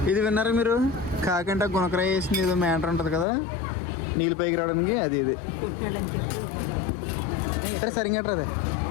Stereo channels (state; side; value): drops out; right; at 3.2 s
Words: ఇది విన్నారా మీరు? కాకంటే గుణకరాయ వేసింది ఏదో మ్యాటర్ ఉంటుంది కదా నీళ్ళు పైకి రావడానికి, అది ఇది సరిగ్గా అదే